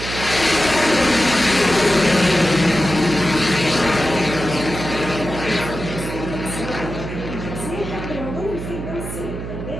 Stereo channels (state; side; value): noise; right; hum, 7 dB below the sound